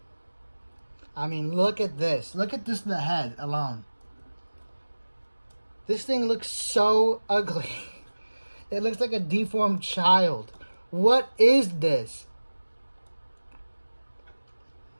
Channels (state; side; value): inverted; both; correlation -1.00